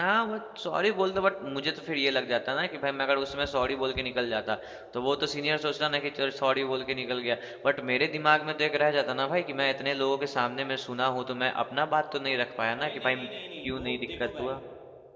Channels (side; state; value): both; identical; correlation 1.00